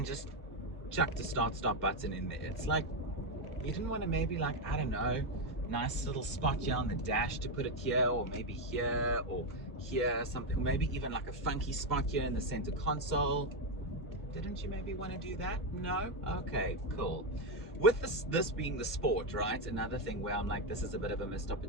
just chucked the start stop button in there. It's like, you didn't want to maybe, like, I don't know, nice little spot here on the dash to put it here, or maybe here, or here, something, maybe even like a funky spot here in the center console. Didn't you maybe want to do that? No? Okay, cool. with this being the Sport, right? Another thing where I'm like, this is a bit of a missed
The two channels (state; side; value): normal; both; correlation 0.07